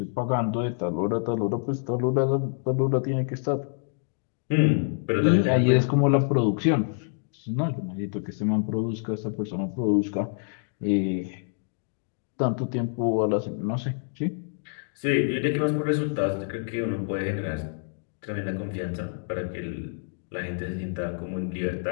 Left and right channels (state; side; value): silent; right; digital silence